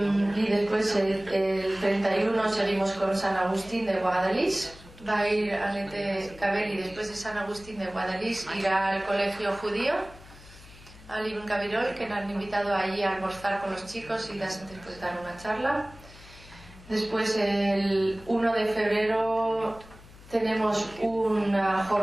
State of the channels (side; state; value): left; noise; hum, 20 dB below the sound